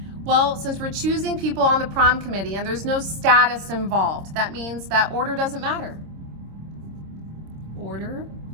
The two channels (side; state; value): left; late; 26 ms